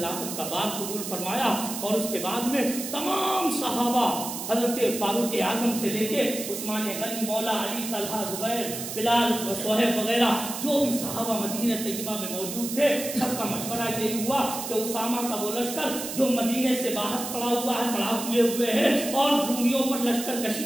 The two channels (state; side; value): noise; right; hiss, 7 dB below the sound